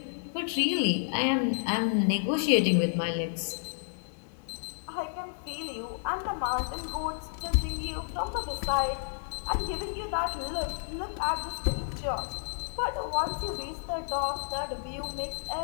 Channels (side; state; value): right; silent; digital silence